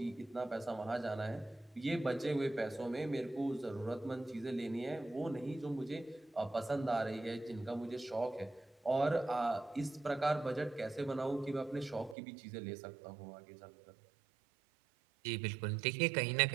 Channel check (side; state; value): left; drops out; at 12.2 s